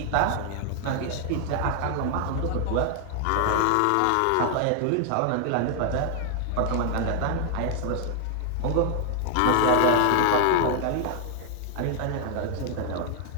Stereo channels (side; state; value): both; different; correlation 0.00